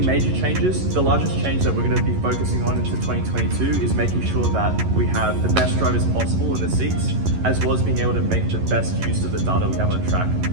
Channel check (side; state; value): left; late; 11 ms